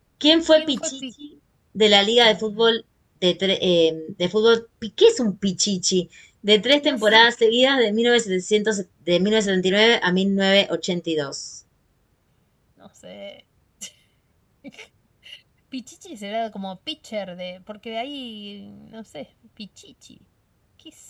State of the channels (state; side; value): identical; both; correlation 1.00